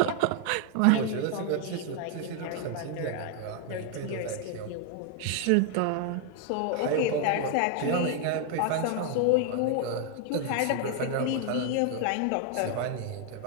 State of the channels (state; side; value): different; both; correlation 0.00